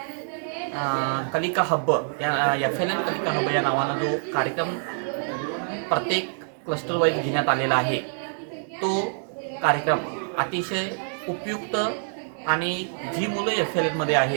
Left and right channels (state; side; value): silent; left; digital silence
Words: कलिका हब्ब या FLN कलिका हब्ब या नावानं जो कार्यक्रम प्रत्येक क्लस्टर वाईज घेण्यात आलेला आहे, तो कार्यक्रम अतिशय उपयुक्त आणि जी मुलं FLN मध्ये